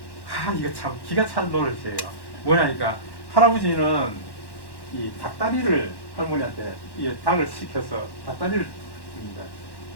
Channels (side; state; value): right; late; 1.1 ms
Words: 이거 참 기가 찬 노릇이에요. 뭐냐니까 할아버지는 이 닭다리를 할머니한테 이 닭을 시켜서 닭다리를 줍니다.